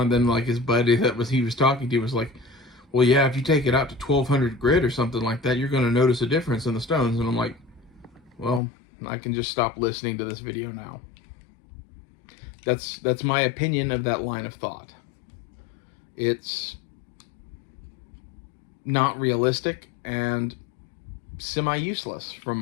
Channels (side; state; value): right; drops out; at 8.6 s